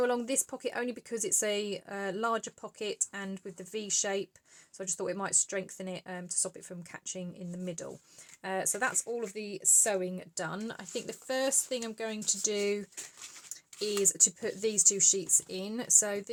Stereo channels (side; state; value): both; identical; correlation 1.00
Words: along this pocket only because it's a larger pocket and with the V shape, so I just thought it might strengthen it to stop it from catching in the middle. So that's all of the sewing done. I think the first thing I'm going to do is to put these two sheets in. So